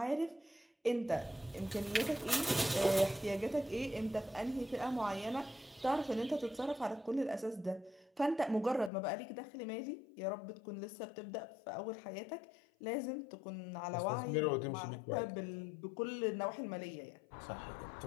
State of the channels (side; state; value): right; drops out; at 8.9 s